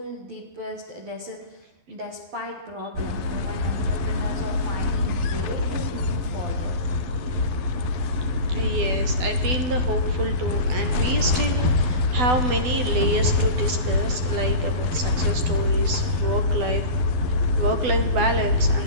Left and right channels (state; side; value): late; left; 12 ms